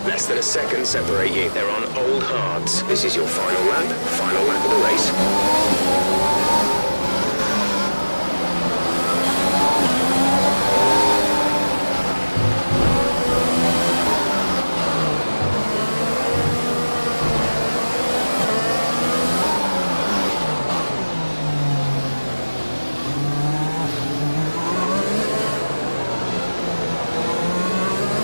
Less than a second separate you. They're on old hards. This is your final lap of the race.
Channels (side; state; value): both; inverted; correlation -1.00